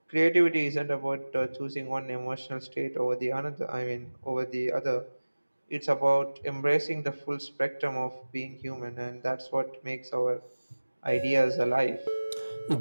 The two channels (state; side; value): inverted; both; correlation -1.00